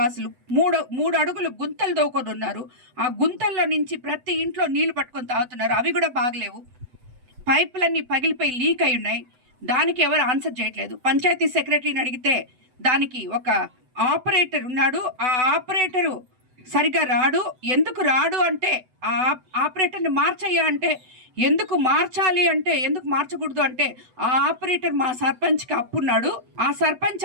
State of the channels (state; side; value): late; left; 8.0 ms